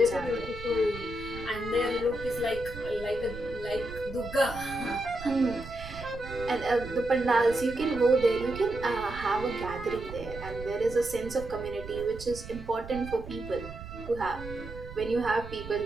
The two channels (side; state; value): right; noise; rumble, 12 dB below the sound